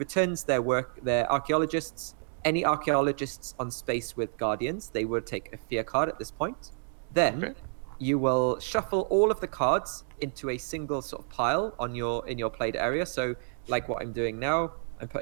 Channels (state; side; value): silent; left; digital silence